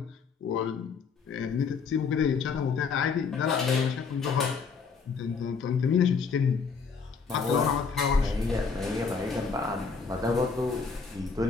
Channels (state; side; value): quieter; right; 5.4 dB